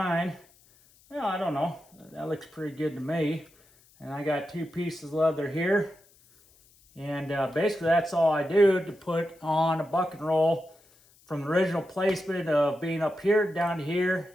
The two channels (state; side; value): noise; left; hiss, 30 dB below the sound